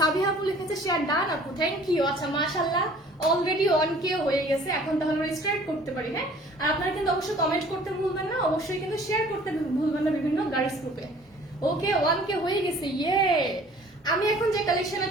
আপু লিখেছে শেয়ার ডান আপু, থ্যাংক ইউ। আচ্ছা মাশাআল্লাহ, অলরেডি 1K হয়ে গেছে, এখন তাহলে আমরা স্টার্ট করতে পারি। হ্যাঁ, আর আপনারা কিন্তু অবশ্যই কমেন্ট করতে ভুলবেন না, অবশ্যই কিন্তু শেয়ার করতে ভুলবেন না বিভিন্ন গার্লস গ্রুপে। ওকে, 1K হয়ে গেছে, ইয়ে। আমি এখন যে কালেকশনে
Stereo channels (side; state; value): both; normal; correlation 0.52